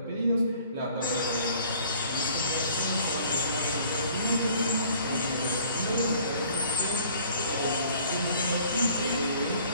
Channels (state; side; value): inverted; both; correlation -0.55